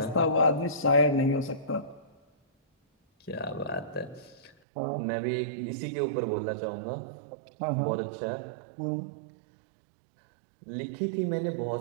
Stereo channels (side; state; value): left; drops out; at 4.5 s